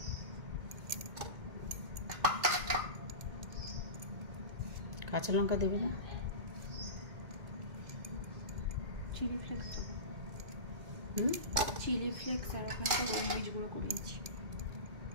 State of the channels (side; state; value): left; late; 2.1 ms